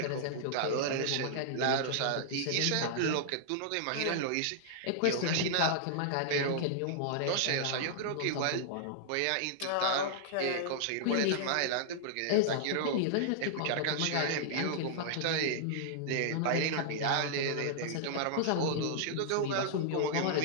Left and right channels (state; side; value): different; both; correlation -0.01